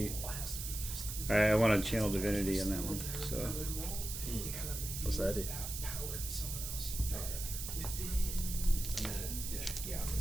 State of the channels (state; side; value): noise; right; hiss, 6 dB below the sound